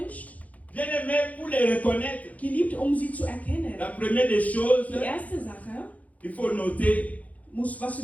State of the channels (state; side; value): late; right; 0.072 ms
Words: bien aimé pour les reconnaître. geliebt, um sie zu erkennen. La première des choses, Die erste Sache, il faut noter was